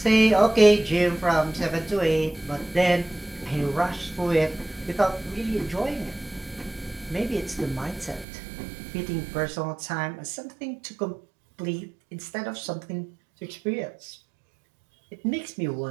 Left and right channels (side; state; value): left; drops out; at 8.2 s